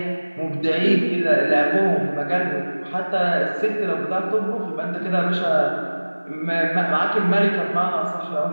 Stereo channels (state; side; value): inverted; both; correlation -1.00